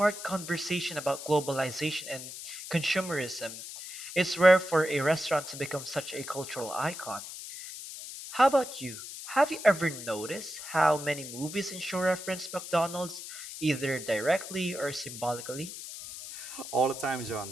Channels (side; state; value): left; noise; hiss, 10 dB below the sound